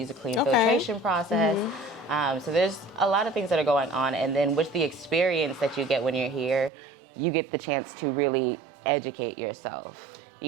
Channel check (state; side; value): drops out; left; at 6.7 s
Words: a clean filtration process. So there's a lot of things that are going on. And then with the experience that you get when you're here, you get the chance to really educate yourself.